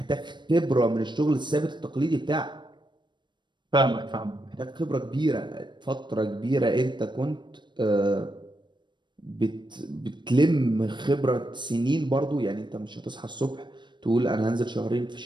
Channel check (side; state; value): left; late; 0.22 ms